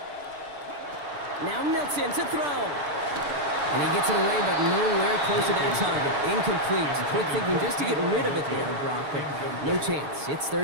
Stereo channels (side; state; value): left; late; 6.8 ms